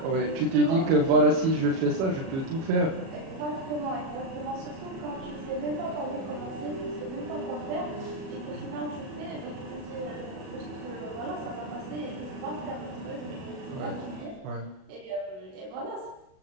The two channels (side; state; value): left; late; 37 ms